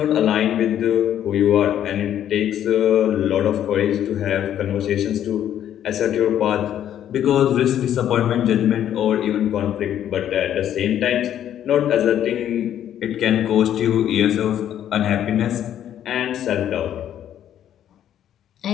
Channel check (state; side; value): quieter; right; 10.6 dB